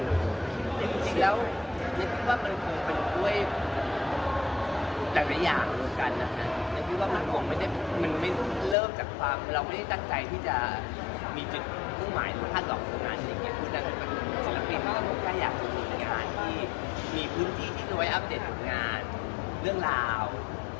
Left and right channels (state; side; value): drops out; right; at 8.8 s